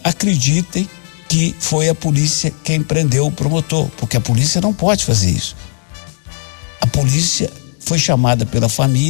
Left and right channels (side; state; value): right; silent; digital silence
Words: acreditem que foi a polícia quem prendeu o promotor, porque a polícia não pode fazer isso. A polícia foi chamada pela